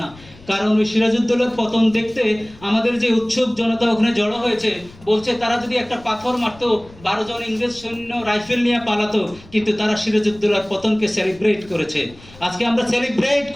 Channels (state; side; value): noise; left; rumble, 23 dB below the sound